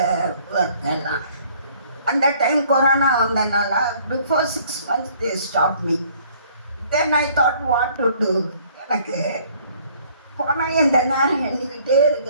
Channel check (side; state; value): both; inverted; correlation -0.59